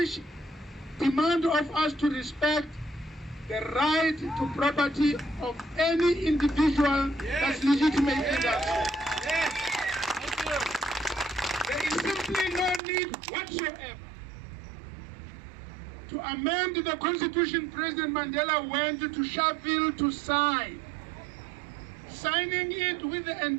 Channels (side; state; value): left; drops out; at 12.8 s